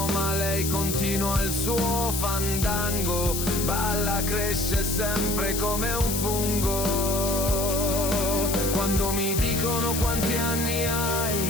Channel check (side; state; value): left; noise; hiss, 3 dB below the sound